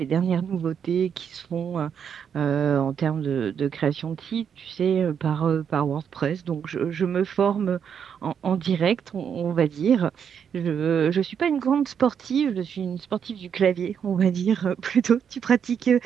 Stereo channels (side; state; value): left; quieter; 7.7 dB